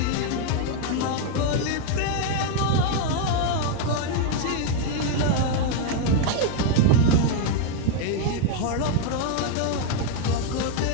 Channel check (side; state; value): both; different; correlation 0.00